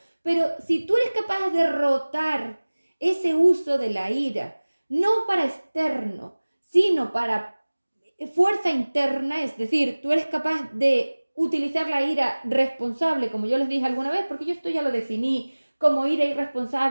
Pero si tú eres capaz de derrotar ese uso de la ira, no para externo, sino para fuerza interna, es decir, tú eres capaz de utilizar la ira responsable, como yo les dije alguna vez, porque yo esto ya lo definí como ira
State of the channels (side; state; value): both; inverted; correlation -1.00